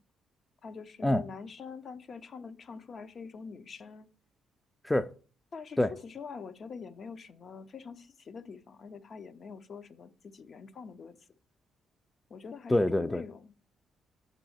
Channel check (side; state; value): both; normal; correlation 0.95